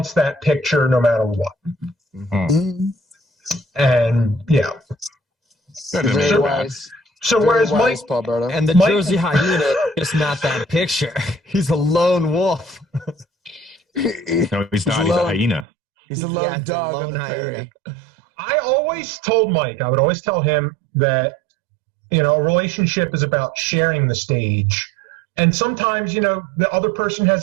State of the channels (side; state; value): left; drops out; at 15.7 s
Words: that picture no matter what. Mm-hmm. And yeah. Very wise. So whereas Mike Paul Berto. And the Jersey hyena is not that picture. He's a lone wolf. No, he's not. He's a hyena. He's a lone dog on the prairie. I always told Mike, I would always tell him that, a relationship is about sharing the stage. And sometimes, the other person has